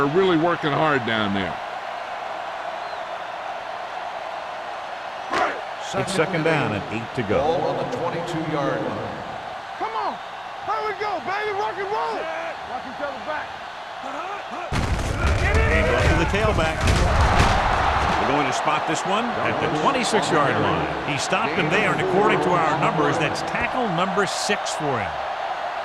really working hard down there. It's second down and 8 to go. Ball on the 22-yard line. Come on. Here we go, baby. Rock and roll. Watch each other back. Hand off to the tailback. We're going to spot this one at the 26-yard line. He stopped him there, and according to our numbers, that's tackle number 6 for him.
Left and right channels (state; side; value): identical; both; correlation 1.00